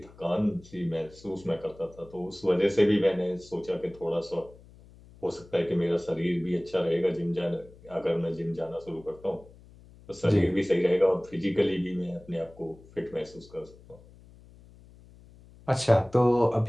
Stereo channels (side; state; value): left; noise; hum, 23 dB below the sound